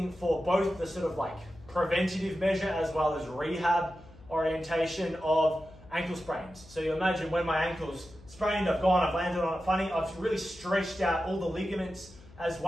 for both the sort of like preventative measure as well as rehab orientation of ankle sprains. So you imagine when my ankle's sprained, I've landed on it funny, I've really stretched out all the ligaments as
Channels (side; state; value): left; noise; hum, 22 dB below the sound